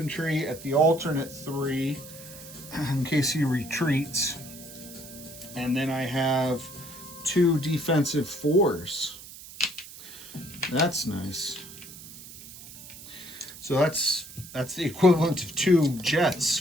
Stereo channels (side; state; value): right; noise; hiss, 16 dB below the sound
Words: at the alternate 3 in case he retreats. And then I have 2 defensive 4s. That's nice. So that's the equivalent of 2 jets